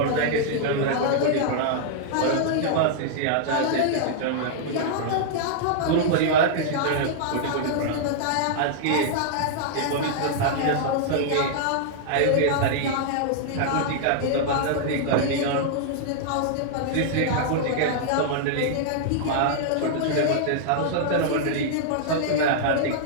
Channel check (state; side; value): different; both; correlation -0.01